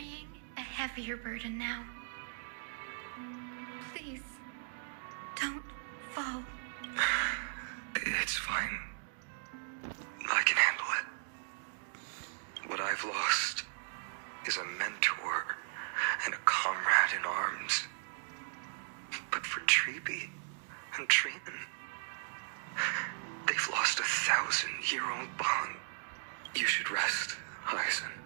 a heavier burden now. Please, don't fall. It's fine. I can handle it. What I've lost is a mentor and a comrade in arms. But for Treeby and Trinan, they've lost a 1,000-year-old bond. You should rest, Hyacinth.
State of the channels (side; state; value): left; silent; digital silence